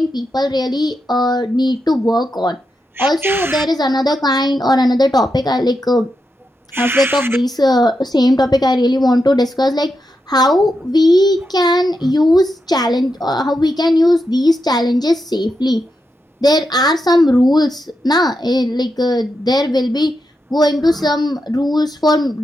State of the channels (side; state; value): both; normal; correlation 0.86